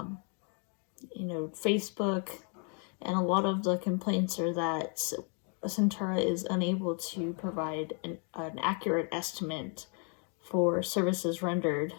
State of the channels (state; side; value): quieter; right; 39.7 dB